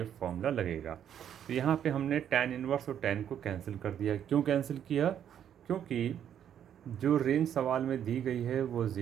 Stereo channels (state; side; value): quieter; left; 9.5 dB